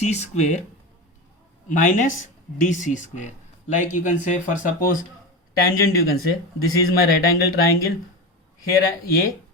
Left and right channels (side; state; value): both; normal; correlation 0.22